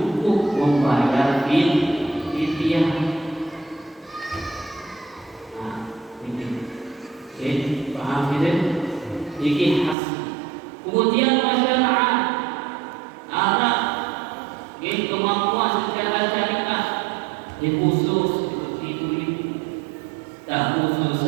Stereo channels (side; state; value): left; drops out; at 10.0 s